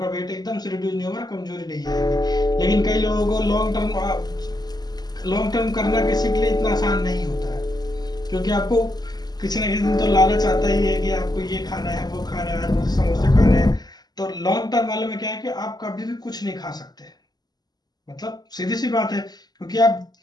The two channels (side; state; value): right; late; 0.20 ms